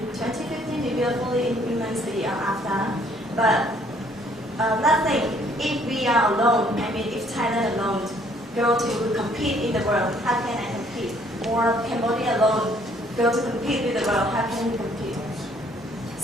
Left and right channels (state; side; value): normal; both; correlation 0.63